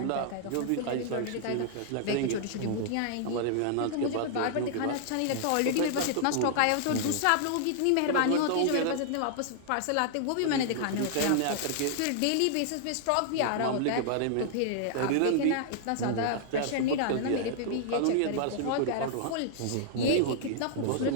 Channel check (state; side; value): different; both; correlation -0.01